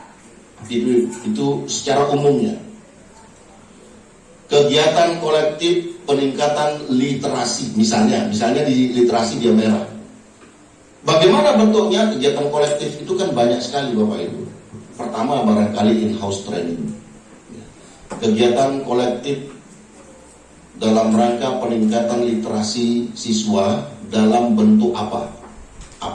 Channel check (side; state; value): both; identical; correlation 1.00